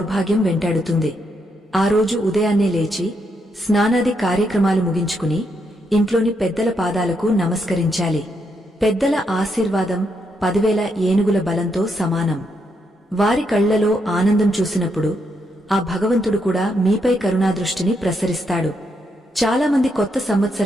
వెంటాడుతుంది. ఆ రోజు ఉదయాన్నే లేచి స్నానాది కార్యక్రమాలు ముగించుకుని ఇంట్లోని పెద్దల పాదాలకు నమస్కరించాలి. పెద్దల ఆశీర్వాదం 10,000 ఏనుగుల బలంతో సమానం. వారి కళ్లలో ఆనందం చూసినప్పుడు ఆ భగవంతుడు కూడా మీపై కరుణాదృష్టిని ప్రసరిస్తాడు. చాలామంది కొత్త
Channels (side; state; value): both; normal; correlation 0.79